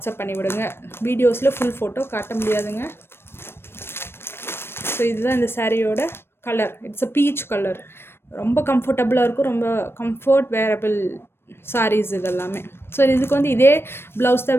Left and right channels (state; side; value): late; right; 0.12 ms